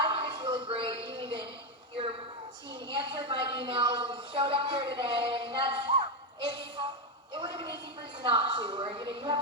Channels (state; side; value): normal; both; correlation 0.07